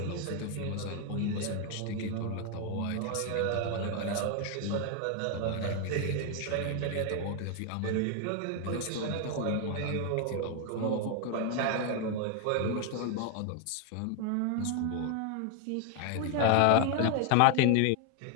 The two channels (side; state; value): both; different; correlation 0.01